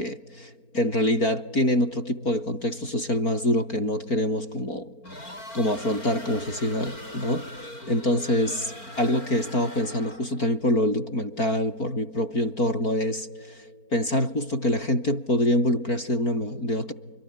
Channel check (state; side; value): late; right; 4.4 ms